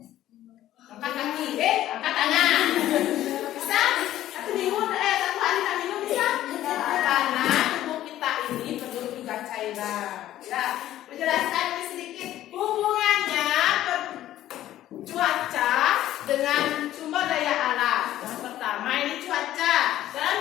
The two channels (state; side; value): quieter; right; 13.3 dB